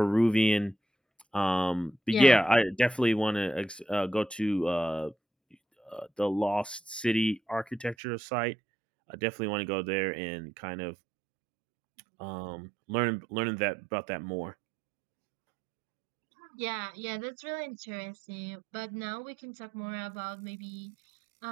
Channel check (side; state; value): left; drops out; at 8.0 s